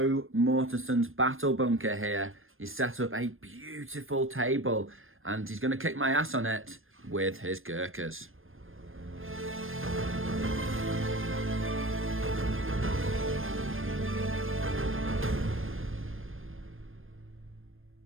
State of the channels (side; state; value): left; late; 0.59 ms